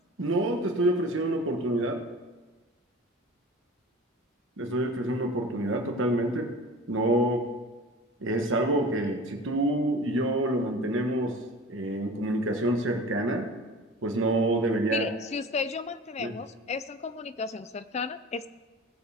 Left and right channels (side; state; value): both; normal; correlation 0.39